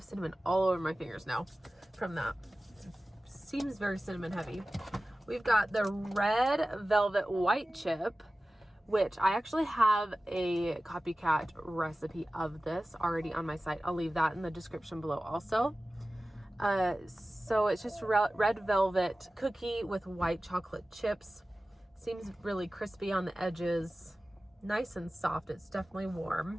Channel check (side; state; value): both; normal; correlation 0.96